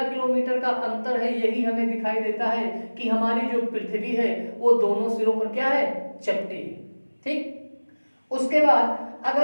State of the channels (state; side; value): inverted; both; correlation -1.00